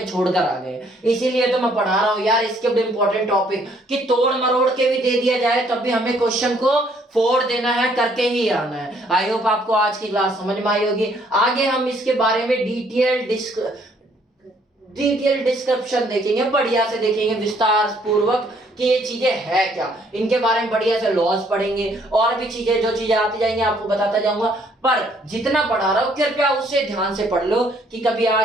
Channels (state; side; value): normal; both; correlation 0.65